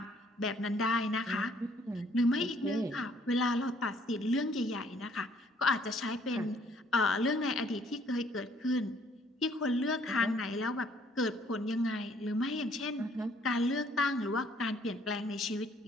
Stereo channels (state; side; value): normal; both; correlation 0.62